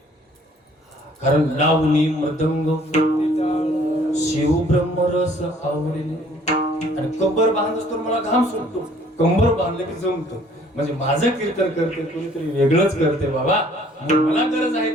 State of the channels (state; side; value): normal; both; correlation 0.58